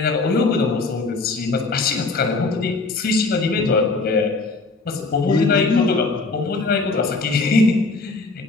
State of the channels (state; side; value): quieter; right; 3.7 dB